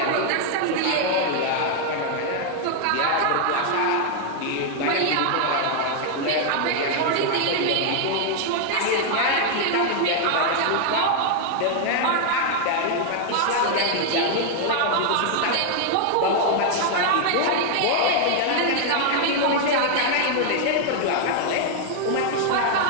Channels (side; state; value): both; different; correlation 0.00